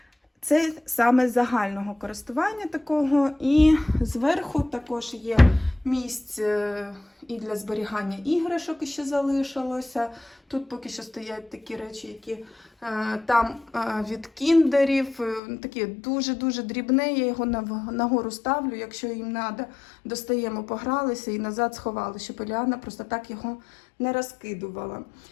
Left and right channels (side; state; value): right; drops out; at 15.4 s